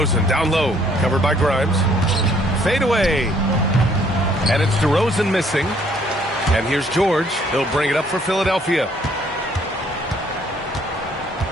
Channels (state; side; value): normal; both; correlation 0.63